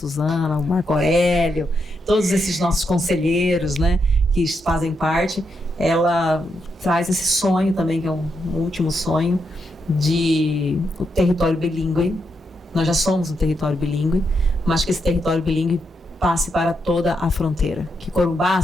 o Marco Aurélio, todos esses nossos conselheiros, né, que fazem parte. Ela traz esse sonho também, que é um último sonho, de o território bilíngue. Nós já somos um território bilíngue, mas que esse território bilíngue passe para toda a fronteira. Que Corumbá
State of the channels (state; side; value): normal; both; correlation 0.82